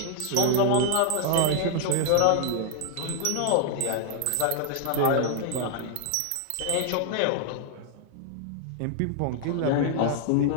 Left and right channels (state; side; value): different; both; correlation 0.00